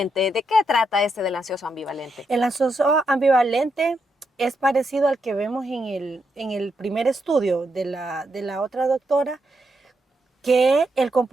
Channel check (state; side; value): normal; both; correlation 0.81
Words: ¿De qué trata del ansioso ambivalente? El ansioso ambivalente es parecido al que vemos en el primer estudio de la otra doctora, que el